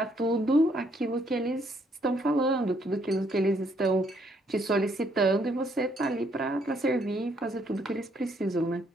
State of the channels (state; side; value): normal; both; correlation 0.70